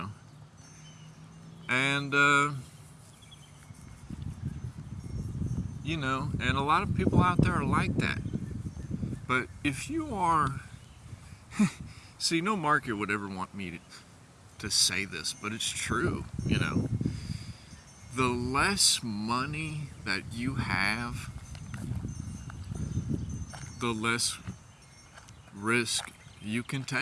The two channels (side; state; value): both; identical; correlation 1.00